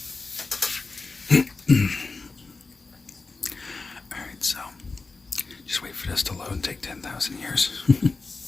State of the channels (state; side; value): quieter; right; 3.9 dB